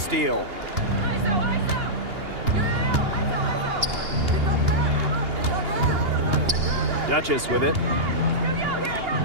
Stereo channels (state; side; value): late; left; 2.8 ms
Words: Duchess with it.